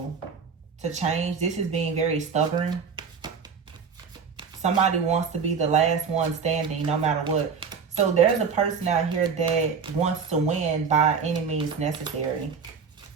to change. This is being very stubborn. Somebody wants to be the last one standing no matter what. So there's a person out here that wants to win by any means necessary.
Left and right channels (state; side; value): quieter; left; 6.0 dB